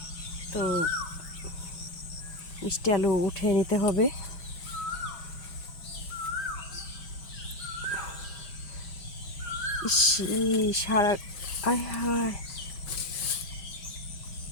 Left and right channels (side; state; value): right; late; 6.2 ms